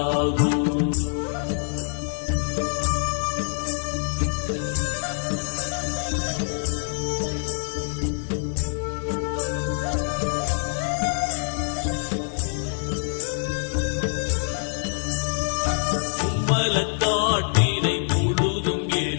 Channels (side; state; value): right; silent; digital silence